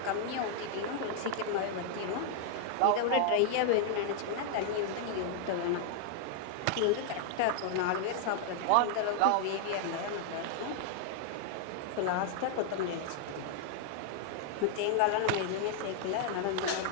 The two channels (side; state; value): both; different; correlation 0.00